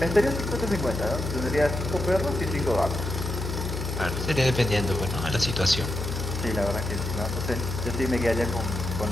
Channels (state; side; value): noise; left; hum, 4 dB below the sound